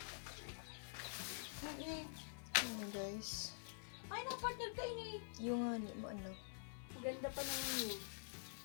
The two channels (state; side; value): silent; right; digital silence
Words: Hani. Ayan guys. Ay, ang partner kayo niyo. Yung nga ni mo ano. Ganda pa naman yun.